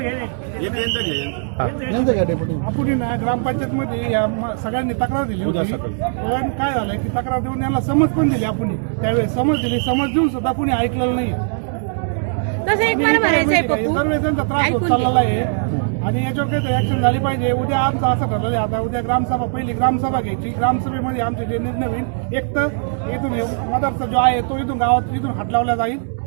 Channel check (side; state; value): left; silent; digital silence